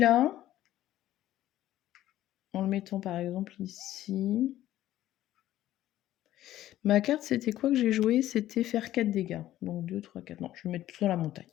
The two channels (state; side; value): quieter; right; 13.7 dB